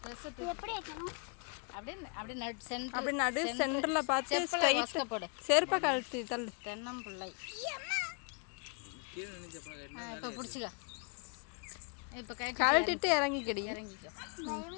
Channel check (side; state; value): right; quieter; 37.3 dB